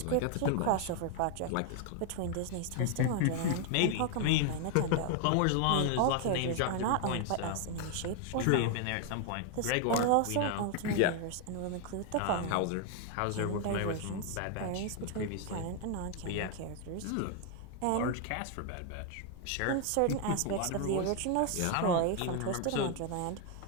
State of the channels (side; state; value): both; different; correlation 0.00